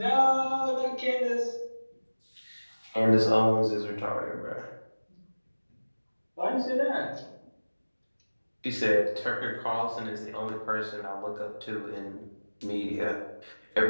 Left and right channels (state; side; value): inverted; both; correlation -1.00